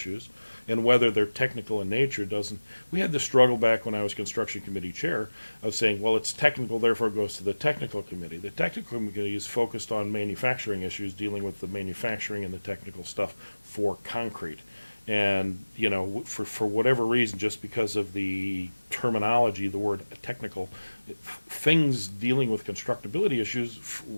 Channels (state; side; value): inverted; both; correlation -1.00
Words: and whether they're technical in nature doesn't. We had the struggle back when I was construction committee chair of saying, well, it's technical, therefore it goes to the technical committee. The technical committee is focused on manufacturing issues, dealing with the manufacturing and the technical stuff for concrete. And, you know, for whatever reason, just because of the terminology, the word technical, things dealing with constructability issues